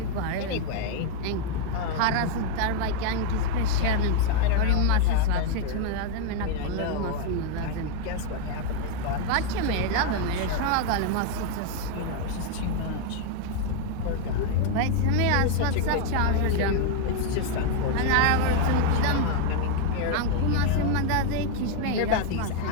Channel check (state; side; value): different; both; correlation 0.01